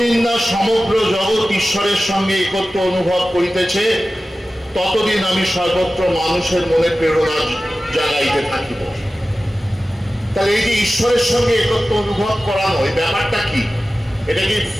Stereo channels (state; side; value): normal; both; correlation 0.95